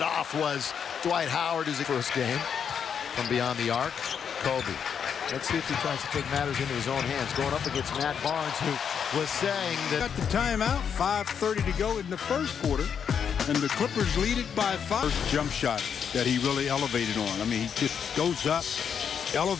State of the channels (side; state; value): right; quieter; 7.4 dB